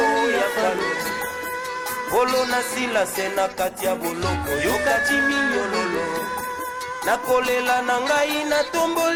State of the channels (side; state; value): both; identical; correlation 1.00